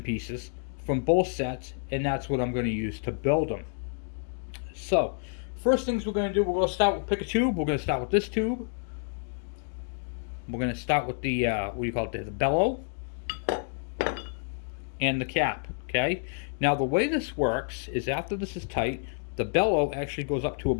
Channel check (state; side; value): silent; right; 57 dB below the other